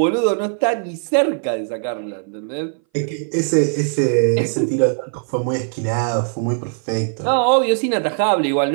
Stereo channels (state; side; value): silent; left; 61 dB below the other